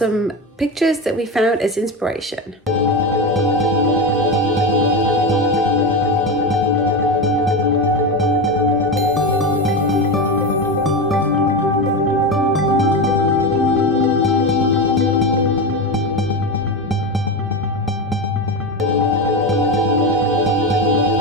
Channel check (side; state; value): both; normal; correlation 0.18